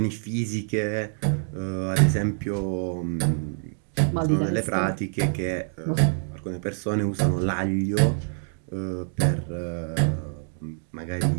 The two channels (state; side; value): silent; left; 61 dB below the other